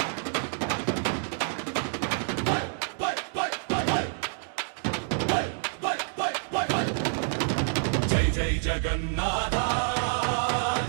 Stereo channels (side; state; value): left; silent; 59 dB below the other